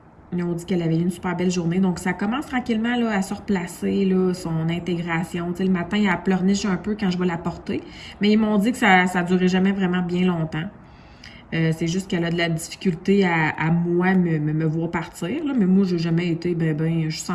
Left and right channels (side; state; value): both; identical; correlation 1.00